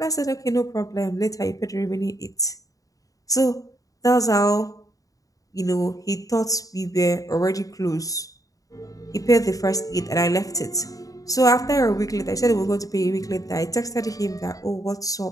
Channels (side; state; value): right; late; 0.17 ms